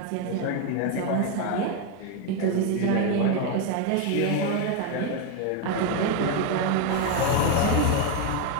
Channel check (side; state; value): both; different; correlation 0.02